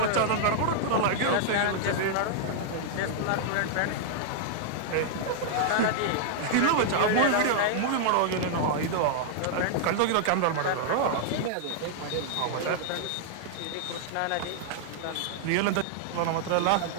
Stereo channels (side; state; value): both; different; correlation -0.01